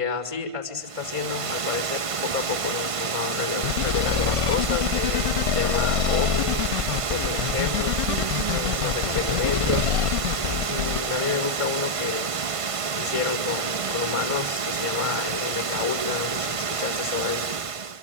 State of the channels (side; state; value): left; late; 1.5 ms